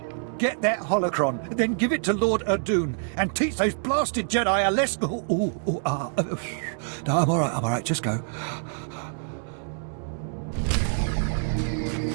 Get that holocron, then give it to Lord Alderaan, and teach those blasted Jedi a lesson. No, I'm all right, just go.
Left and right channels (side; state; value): left; silent; digital silence